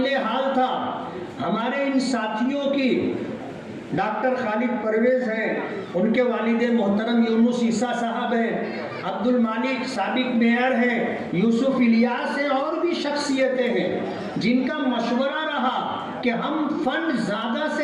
हाल था। हमारे इन साथियों की डॉक्टर खालिद परवेज हैं, उनके वालिद मोहतरम यूनुस ईसा साहब हैं, अब्दुल मालिक साबिक मेयर हैं, यूसुफ इलियास हैं और भी शख्सियतें हैं जिनका मशवरा रहा कि हम फंड ज़्यादा से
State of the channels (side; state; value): both; identical; correlation 1.00